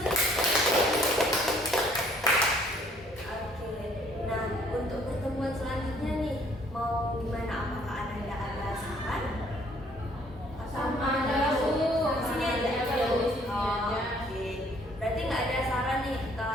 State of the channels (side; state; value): both; normal; correlation 0.61